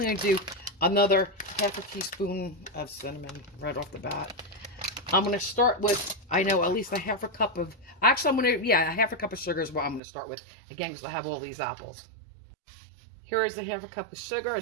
going to do another 1/2 teaspoon of cinnamon right off the bat. I'm going to start with, I know, at least a 1/2 cup of, actually I'm going to, yeah, a 1/2 cup of sugar is what I'm going to start with, again, because I have all these apples. Here is the 1/2 cup of sugar,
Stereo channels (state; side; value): drops out; left; at 10.0 s